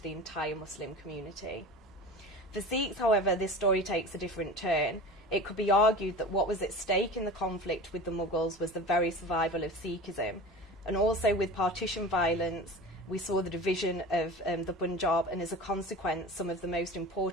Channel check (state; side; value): normal; both; correlation 0.34